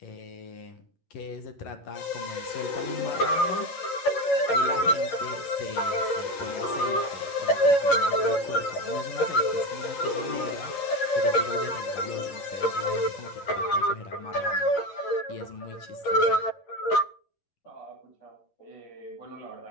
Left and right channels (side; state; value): right; late; 11 ms